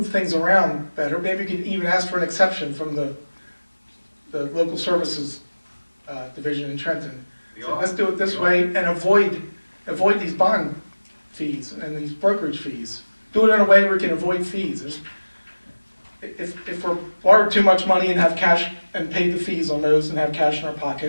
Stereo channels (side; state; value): both; inverted; correlation -1.00